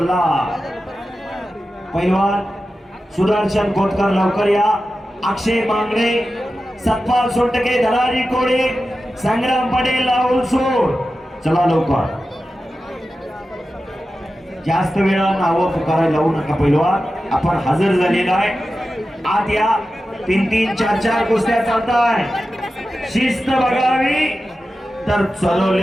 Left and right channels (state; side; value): normal; both; correlation 0.93